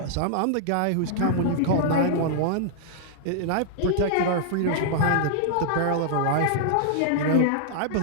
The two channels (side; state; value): both; different; correlation -0.01